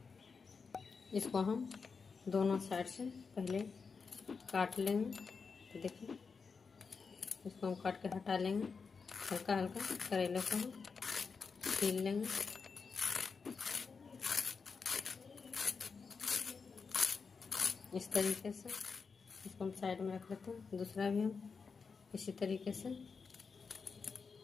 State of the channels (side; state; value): right; quieter; 5.2 dB